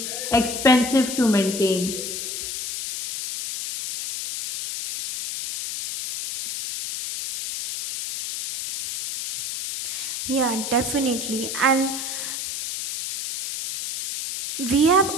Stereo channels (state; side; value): noise; left; hiss, 5 dB below the sound